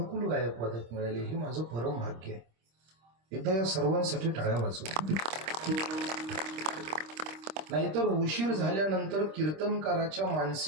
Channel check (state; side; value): late; left; 26 ms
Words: गायक वादक मिळाले, हे माझं परम भाग्य आहे. एकदा या सर्वांसाठी टाळ्या वाजवा. नाहीतर उशीर झाल्यानंतर कीर्तनकाराच्या